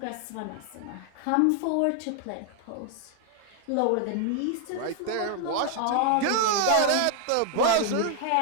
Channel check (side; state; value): both; different; correlation 0.00